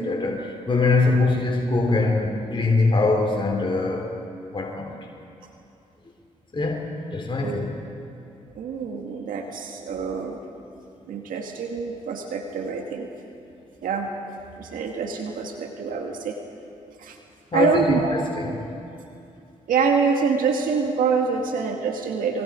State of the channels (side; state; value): both; normal; correlation 0.58